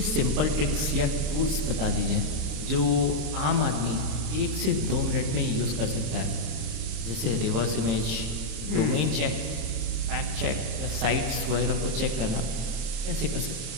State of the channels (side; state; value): left; late; 27 ms